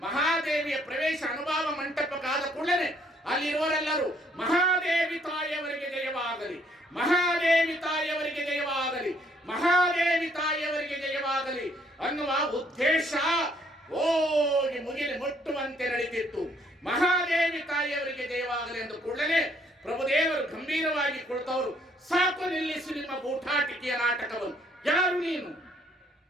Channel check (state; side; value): normal; both; correlation 0.66